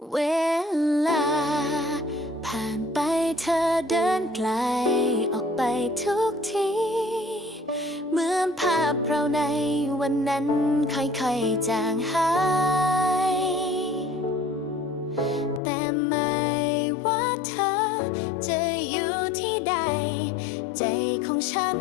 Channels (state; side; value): drops out; right; at 15.6 s